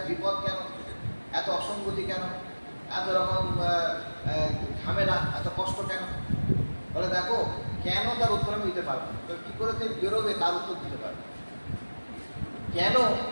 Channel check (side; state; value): both; inverted; correlation -1.00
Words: বিপদ কেন, এত অসঙ্গতি কেন, এত রকম ঝামেলা, এত কষ্ট কেন? বলে দেখো কেন, তার উত্তর আমি দিতে পারবো, তো কী করে তুমি বেরোবে তার উত্তর দিতে পারবে। কেন